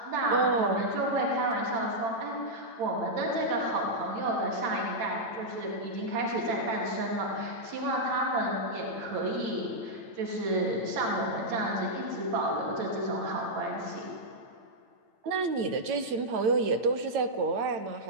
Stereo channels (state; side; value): late; left; 8.9 ms